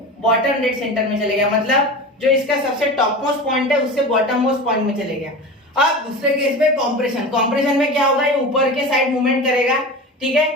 बॉटम डेड सेंटर में चले गया, मतलब जो इसका सबसे टॉप मोस्ट पॉइंट है उससे बॉटम मोस्ट पॉइंट में चले गया। अब दूसरे केस में कॉम्प्रेशन, कॉम्प्रेशन में क्या होगा, ये ऊपर के साइड मूवमेंट करेगा, ठीक है,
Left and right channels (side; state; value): both; normal; correlation 0.30